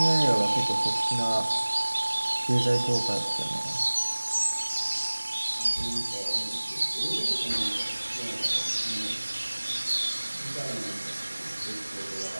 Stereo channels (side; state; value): both; inverted; correlation -1.00